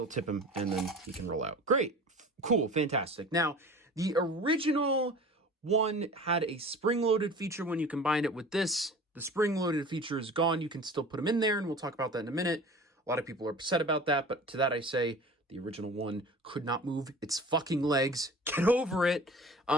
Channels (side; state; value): both; normal; correlation 0.40